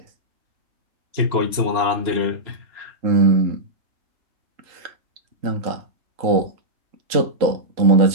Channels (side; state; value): left; late; 3.0 ms